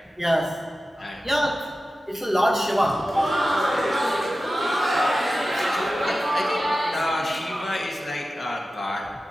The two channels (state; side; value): normal; both; correlation 0.94